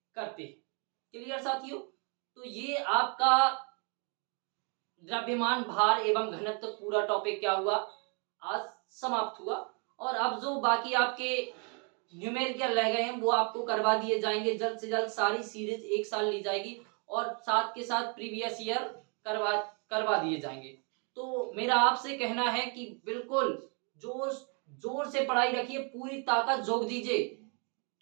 करते हैं। क्लियर साथियों, तो ये आपका द्रव्यमान, भार एवं घनत्व पूरा टॉपिक क्या हुआ, आज समाप्त हुआ। और अब जो बाकी आपके न्यूमेरिकल रह गए हैं वो आपको करवा दिए जाएंगे जल्द से जल्द। सारी सीरीज एक साल ली जाएगी और साथ के साथ प्रीवियस ईयर करवा करवा दिए जाएंगे। तो मेरा आपसे कहना है कि बिल्कुल जोर जोर से पढ़ाई रखिए, पूरी ताकत झोंक दीजिए।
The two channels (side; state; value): left; quieter; 36.9 dB